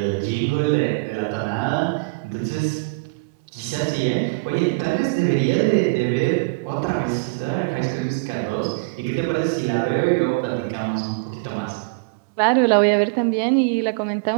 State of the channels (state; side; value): quieter; left; 29.4 dB